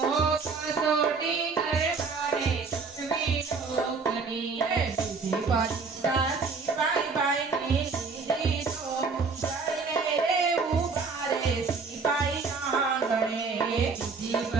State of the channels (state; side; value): quieter; left; 4.7 dB